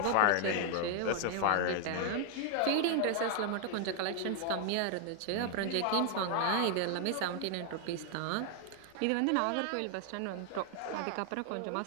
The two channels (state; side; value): different; both; correlation 0.00